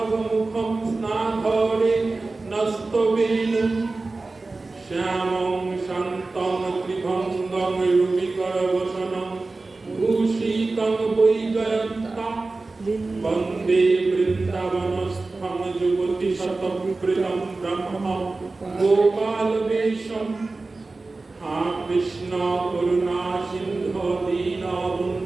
स्नाधरे नस्तवेणुं। श्यामं शान्तं त्रिभङ्गं रुचिकरवसनं भूषितं वैजयन्ता वन्दे वृन्दावनस्थं युवतिशतप्रियं ब्रह्म गोपालवेशम्। कृष्ण करुणा सिन्धो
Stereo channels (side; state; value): left; quieter; 3.5 dB